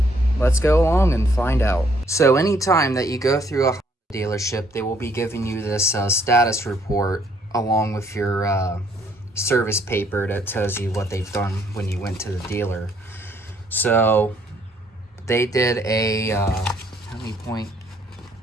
Let's go along and find out. So anytime that you go through a dealership, they will be giving you this status report along with your service paper that tells you what they've done when you went to the dealer. So they did a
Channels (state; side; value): normal; both; correlation 0.66